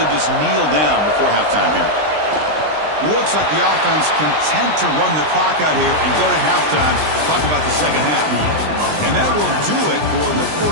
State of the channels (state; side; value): late; left; 20 ms